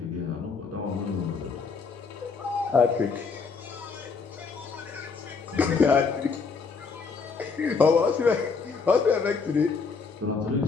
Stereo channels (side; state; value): right; quieter; 5.0 dB